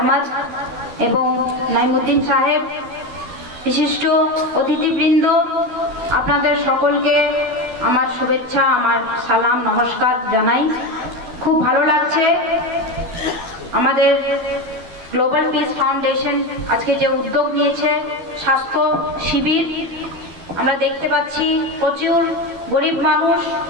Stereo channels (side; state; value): left; late; 12 ms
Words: এবং নাইমুদ্দিন সাহেব, বিশিষ্ট অতিথিবৃন্দ, আপনাদের সকলকে আমার শুভেচ্ছা, আমার সালাম, নমস্কার জানাই। খুব ভালো লাগছে আমাদের গ্লোবাল পিস ফাউন্ডেশন আজকে যে উদ্যোগ নিয়েছে স্বাস্থ্য শিবির। আমরা দেখতে পাচ্ছি প্রচুর গরিব মানুষ